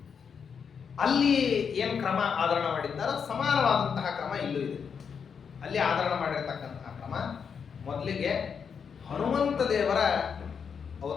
ಅಲ್ಲಿ ಏನು ಕ್ರಮ ಆಧರಣ ಮಾಡಿದ್ದಾರೋ ಸಮಾನವಾದಂತಹ ಕ್ರಮ ಇಲ್ಲೂ ಇದೆ. ಅಲ್ಲಿ ಆಧರಣ ಮಾಡಿರ್ತಕ್ಕಂತಹ ಕ್ರಮ ಮೊದಲಿಗೆ ಹನುಮಂತ ದೇವರ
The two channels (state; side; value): quieter; right; 6.6 dB